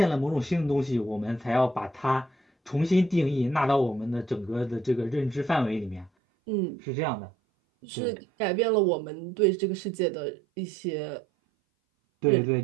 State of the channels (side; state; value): left; drops out; at 6.1 s